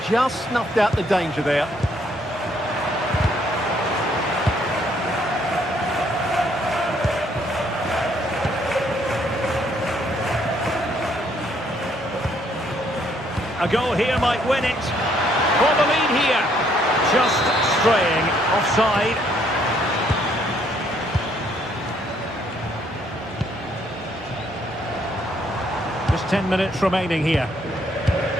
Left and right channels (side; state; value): both; normal; correlation 0.68